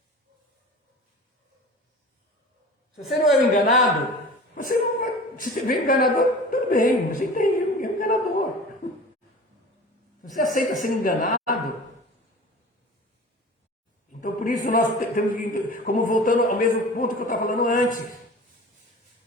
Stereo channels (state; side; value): normal; both; correlation 0.38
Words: Se você não é um enganado, você não vai. Se você vê um enganador, tudo bem, você entende, é um enganador. Se você aceita ser enganado, então por isso nós temos que, como voltando ao mesmo ponto que eu estava falando antes,